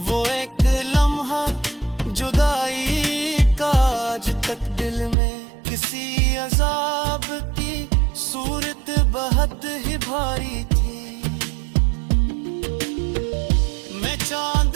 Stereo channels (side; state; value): left; drops out; at 5.2 s